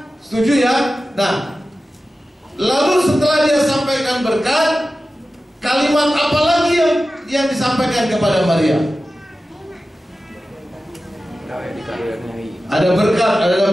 Setuju ya? Nah, lalu setelah dia sampaikan berkat, kalimat apa lagi yang disampaikan kepada Maria? Ada berkat, ada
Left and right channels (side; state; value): both; normal; correlation 0.94